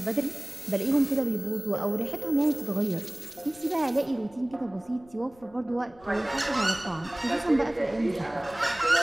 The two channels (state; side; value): noise; left; rumble, 26 dB below the sound